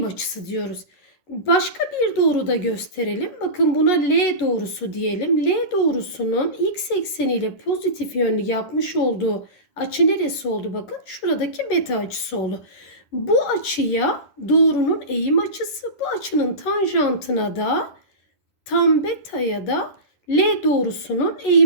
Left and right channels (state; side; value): late; right; 11 ms